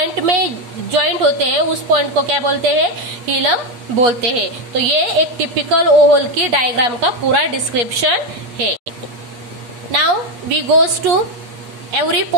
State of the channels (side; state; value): left; late; 8.3 ms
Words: में ज्वाइंट होते हैं उस पॉइंट को क्या बोलते हैं, हिलम बोलते हैं. तो ये एक टिपिकल ओवल की डायग्राम का पूरा डिस्क्रिप्शन है. Now we goes to every